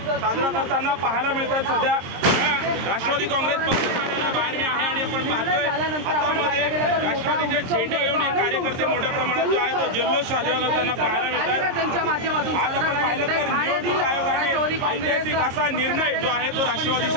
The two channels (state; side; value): late; left; 22 ms